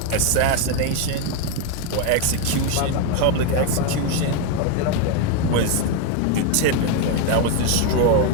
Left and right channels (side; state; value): both; different; correlation 0.02